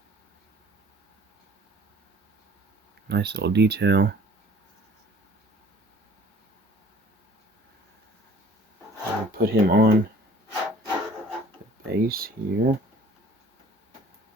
Nice little detail. I'll put him on the base here.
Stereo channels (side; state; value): both; normal; correlation 0.52